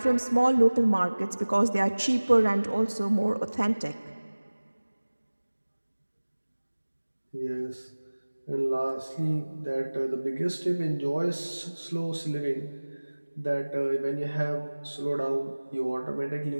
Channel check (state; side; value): inverted; both; correlation -1.00